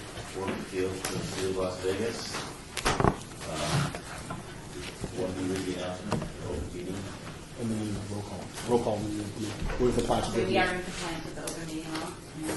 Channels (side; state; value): both; identical; correlation 1.00